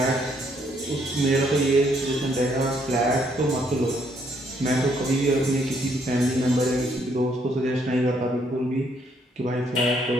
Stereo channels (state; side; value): normal; both; correlation 0.70